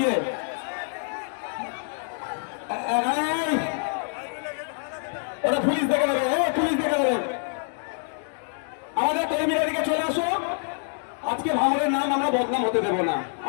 ওরা পুলিশ দেখে দেবে, পুলিশ দেখে দেবে। আমাদের কর্মীরা দিকে চলে আসো, আজকে ভাঙড়ের নাম আমরা বদনাম হতে দেবো না।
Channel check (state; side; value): silent; right; 59 dB below the other